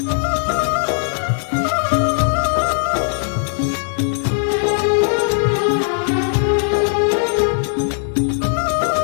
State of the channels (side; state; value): right; silent; digital silence